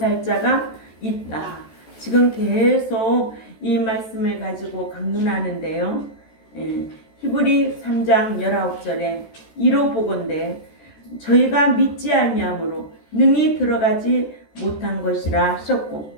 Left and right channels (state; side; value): late; right; 14 ms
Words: 자가 있다. 지금 계속 이 말씀을 가지고 강론하는데요. 히브리 3장 19절에 이로 보건대 저희가 믿지 아니함으로 능히 들어가지 못한 것이라 하셨고,